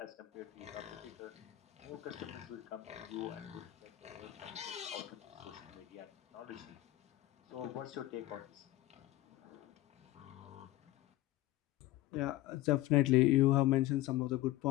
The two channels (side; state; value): right; quieter; 15.4 dB